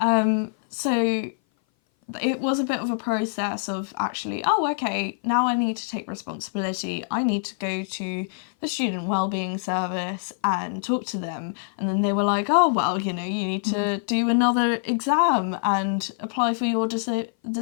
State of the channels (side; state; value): right; silent; 58 dB below the other